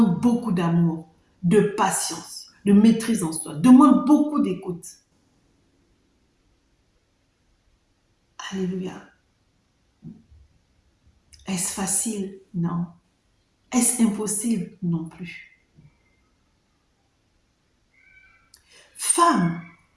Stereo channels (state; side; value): identical; both; correlation 1.00